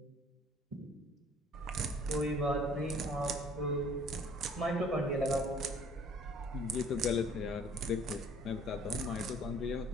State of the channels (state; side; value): normal; both; correlation 0.54